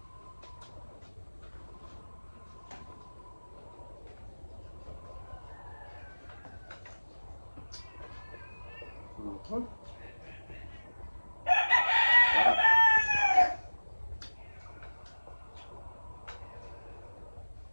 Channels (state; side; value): inverted; both; correlation -1.00